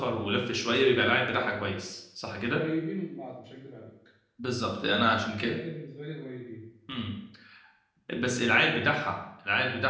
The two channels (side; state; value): both; identical; correlation 1.00